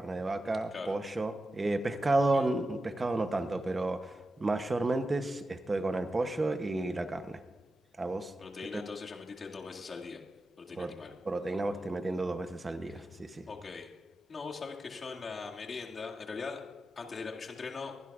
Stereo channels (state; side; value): normal; both; correlation 0.91